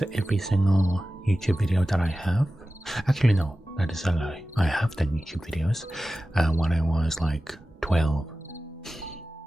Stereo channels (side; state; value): both; normal; correlation 0.95